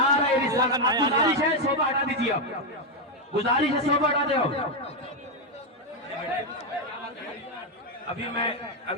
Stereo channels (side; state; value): both; normal; correlation 0.04